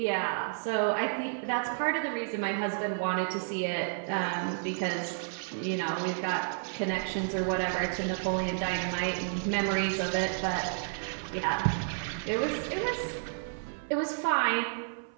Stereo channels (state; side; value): silent; left; 57 dB below the other